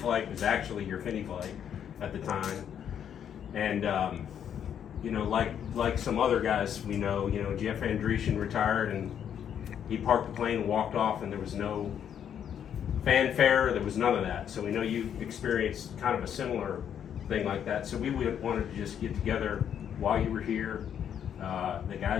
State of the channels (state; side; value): quieter; right; 8.9 dB